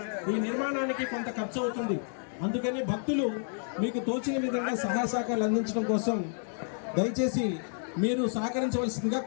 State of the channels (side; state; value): right; silent; 58 dB below the other